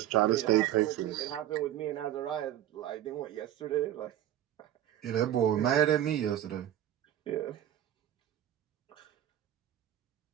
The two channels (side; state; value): left; quieter; 11.9 dB